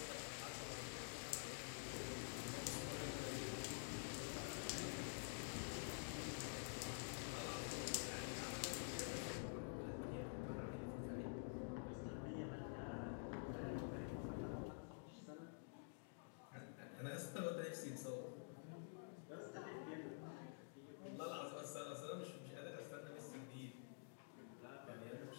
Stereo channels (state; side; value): silent; right; digital silence